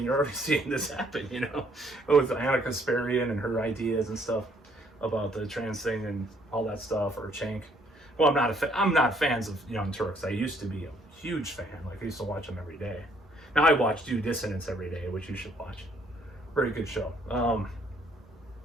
you're already seeing this happen, you know, with Anna Kasparian and her ideas and stuff about the trans thing and all that stuff, or Cenk. Well, I'm not fans of Young Turks. I used to be a huge fan. Like I used to watch them every day. Now I watch Due Dissonance every day, which you should watch. Very good show.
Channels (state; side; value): normal; both; correlation 0.65